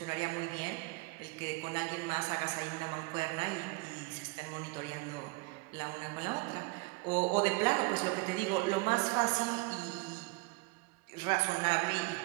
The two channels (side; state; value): left; quieter; 25.5 dB